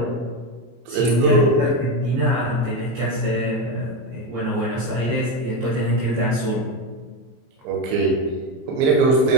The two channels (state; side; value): late; left; 23 ms